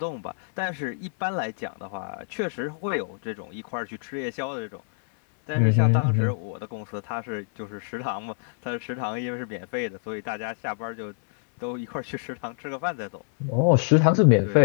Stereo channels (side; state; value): right; silent; digital silence